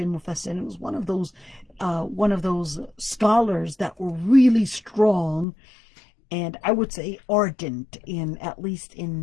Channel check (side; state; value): right; drops out; at 5.5 s